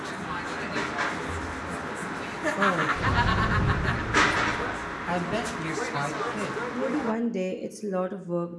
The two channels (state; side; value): identical; both; correlation 1.00